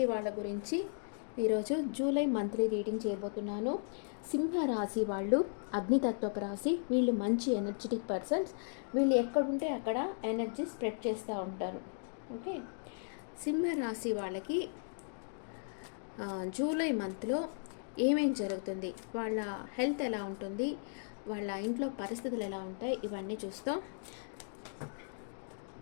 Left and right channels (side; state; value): right; silent; digital silence